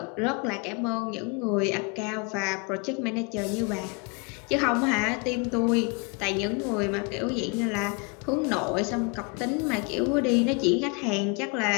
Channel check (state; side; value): quieter; right; 32.1 dB